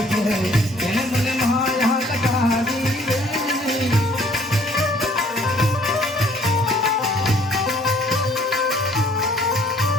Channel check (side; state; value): both; normal; correlation 0.58